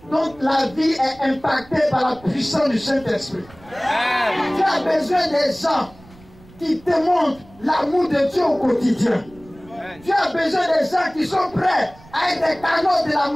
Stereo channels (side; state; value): right; noise; rumble, 24 dB below the sound